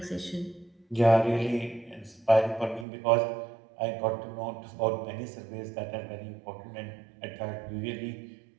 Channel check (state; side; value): drops out; left; at 2.9 s